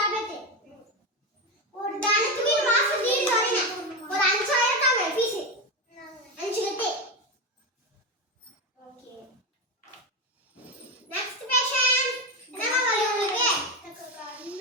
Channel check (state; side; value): normal; both; correlation 0.15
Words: ஒரு தானத்துக்கு மாசம் தீர்ந்து வரீங்க. ஒரு 5000 தாங்க ஃபீஸ். 5 கட்டு. ஓகே. Next patient. என்னமா வலி உங்களுக்கு? எனக்கு